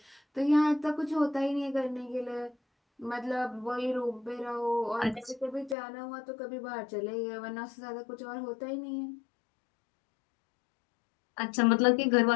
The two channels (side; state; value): right; drops out; at 5.8 s